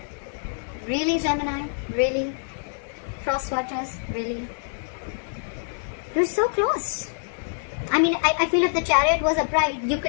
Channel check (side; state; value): right; silent; 61 dB below the other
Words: Really, Gemini? Really? Crosswatchers? Really? You're so close. I mean, I feel if the Chariot was upright, you